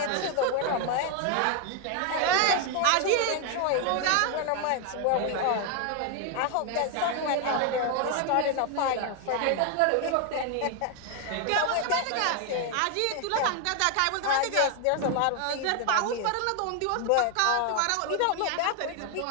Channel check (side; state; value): both; different; correlation 0.01